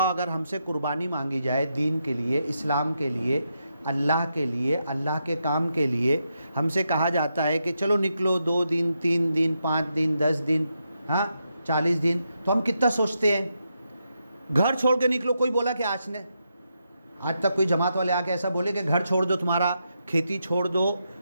अगर हमसे कुर्बानी मांगी जाए दीन के लिए, इस्लाम के लिए, अल्लाह के लिए, अल्लाह के काम के लिए, हमसे कहा जाता है कि चलो निकलो 2 दिन, 3 दिन, 5 दिन, 10 दिन, हाँ 40 दिन, तो हम कितना सोचते हैं? घर छोड़ के निकलो, कोई बोला कि आज तक कोई जमात वाले आके ऐसा बोले कि घर छोड़ दो, तुम्हारा खेती छोड़ दो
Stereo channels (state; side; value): inverted; both; correlation -0.83